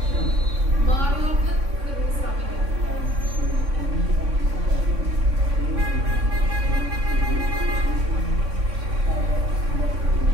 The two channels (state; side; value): late; left; 3.6 ms